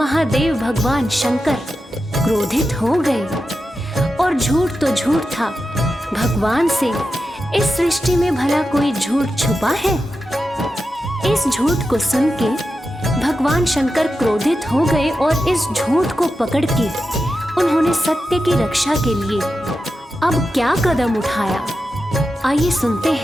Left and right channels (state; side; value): normal; both; correlation 0.90